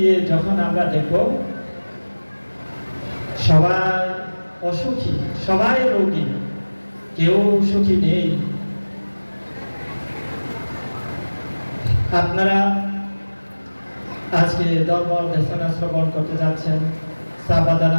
যখন আমরা দেখব সবাই অসুখী, সবাই রোগী, কেউ সুখী নেই। আপনারা আজকে ধর্ম দেশনা শ্রবণ করতে যাচ্ছেন।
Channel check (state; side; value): inverted; both; correlation -1.00